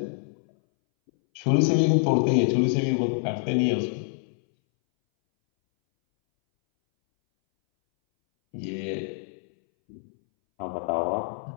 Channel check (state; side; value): silent; right; 61 dB below the other